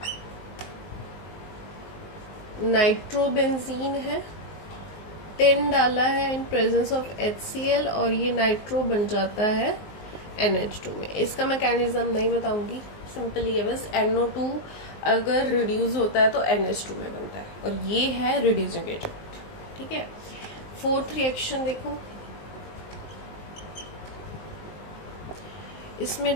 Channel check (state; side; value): late; right; 19 ms